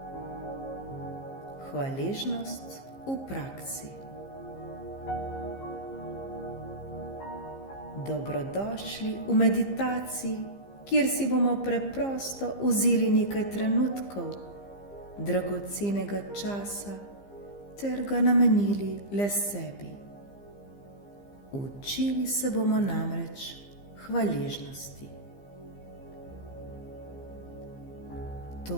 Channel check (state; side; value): late; right; 15 ms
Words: Hvaležnost v praksi. Dobrodošli v meditaciji, kjer si bomo preprosto vzeli nekaj trenutkov dragocenega časa ter ga namenili le sebi. Učili se bomo namreč hvaležnosti.